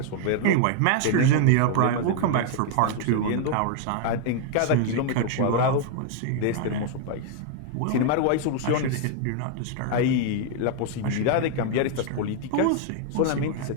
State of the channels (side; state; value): both; different; correlation 0.00